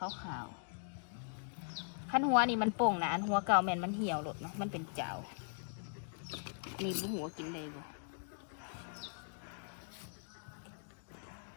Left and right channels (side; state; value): right; silent; digital silence